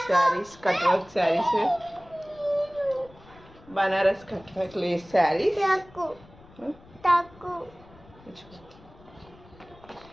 saris, cut work saris, Banaras cut work lace saris.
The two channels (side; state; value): left; noise; rumble, 24 dB below the sound